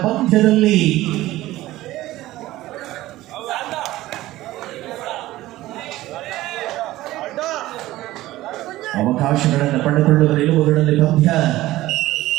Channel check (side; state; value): left; quieter; 16.4 dB